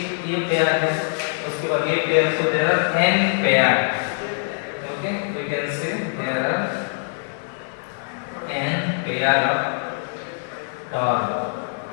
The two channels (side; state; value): right; silent; digital silence